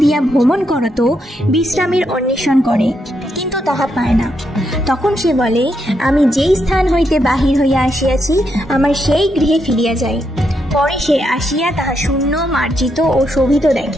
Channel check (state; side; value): normal; both; correlation 0.80